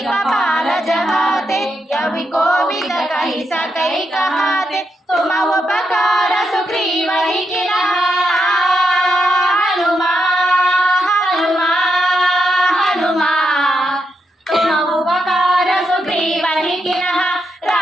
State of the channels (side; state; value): both; normal; correlation 0.83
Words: जहाते कवि कोविद कहि सकै कहाते तुम उपकार सुग्रीवहि किन्हा हनुमा हनुमा हनुमा तुम उपकार सुग्रीवहि किन्हा